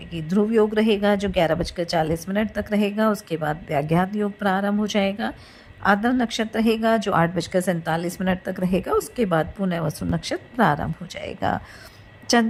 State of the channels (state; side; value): identical; both; correlation 1.00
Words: ध्रुव योग रहेगा जो 11:40 तक रहेगा। उसके बाद व्याघात योग प्रारंभ हो जाएगा। आद्र नक्षत्र रहेगा जो 8:47 तक रहेगा। उसके बाद पुनः वसु नक्षत्र प्रारंभ हो जाएगा।